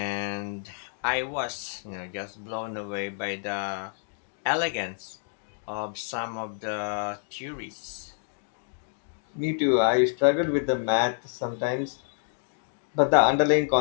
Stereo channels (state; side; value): silent; right; digital silence